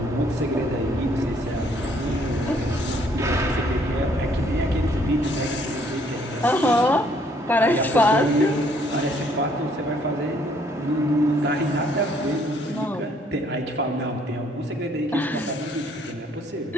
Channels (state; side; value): normal; both; correlation 0.64